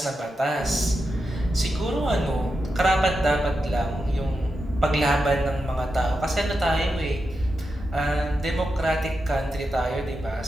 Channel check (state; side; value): normal; both; correlation 0.88